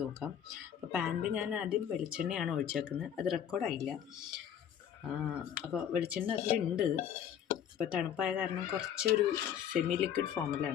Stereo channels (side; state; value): right; quieter; 9.3 dB